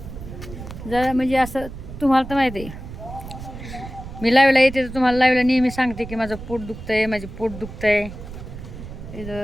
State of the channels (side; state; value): right; noise; rumble, 12 dB below the sound